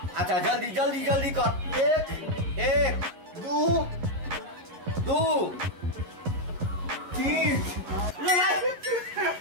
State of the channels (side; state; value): left; late; 11 ms